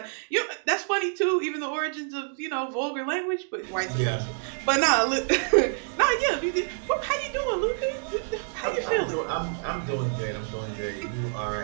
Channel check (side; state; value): left; silent; digital silence